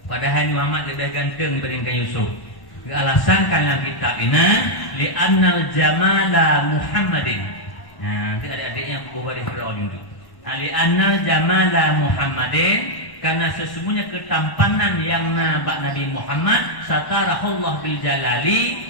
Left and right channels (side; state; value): right; late; 1.1 ms